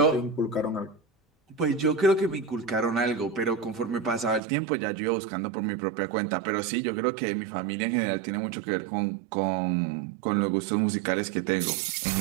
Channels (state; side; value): drops out; left; at 4.4 s